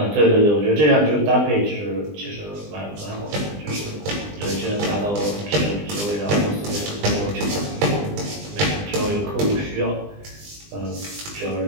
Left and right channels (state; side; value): late; left; 20 ms